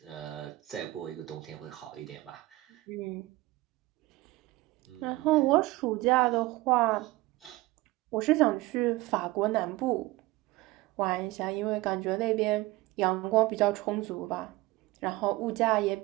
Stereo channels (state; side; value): quieter; left; 19.5 dB